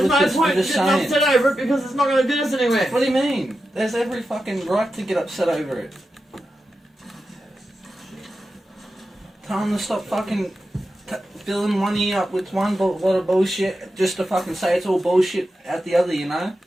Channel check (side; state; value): both; normal; correlation 0.90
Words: no point getting upset over it because it's not going to get us anywhere. What do you mean? There's every fucking right to get upset over it. Tell them to stop fucking filling one ear up with one lot of bullshit just to fucking say it's all bullshit at the other, you know?